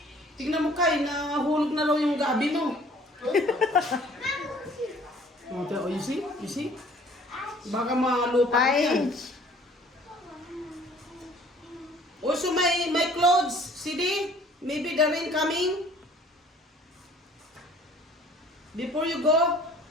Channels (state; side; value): normal; both; correlation 0.54